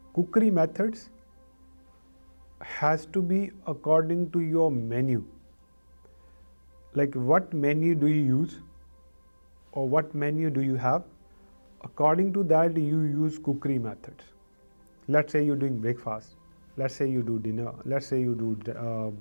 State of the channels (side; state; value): both; inverted; correlation -1.00